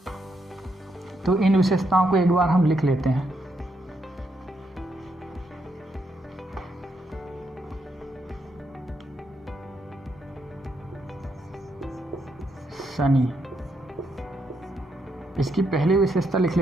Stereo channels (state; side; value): normal; both; correlation 0.78